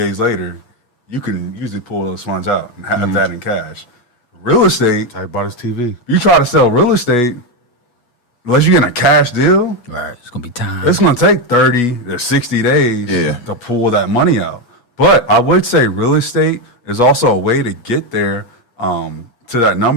later, you can usually pull those funds out and have that in cash. Real estate, I bought his TV. you try to sell real estate, unless you get a cash deal, Right. It's going to be time. it's going to take 30 to 60 days Yeah. to pull that money out. But I would say real estate is also a way to get there to that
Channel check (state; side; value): late; right; 8.2 ms